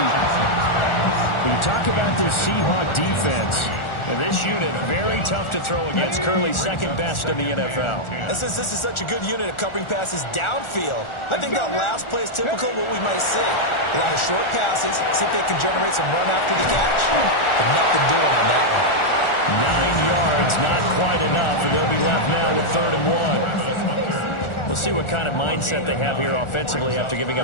When you talk about this Seahawk defense, And this unit, very tough to throw against. Currently second best in the NFL. And since this is such a good unit of covering passes downfield, I think that last play is typical of what we might see. A lot of short passes, see if they can generate some run after the catch. But nothing doing on that one. 9 yards, not quite enough, and they'll be left now with 3rd and 1. We'll see what kind of mindset they have here offensively after giving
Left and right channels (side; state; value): right; late; 1.4 ms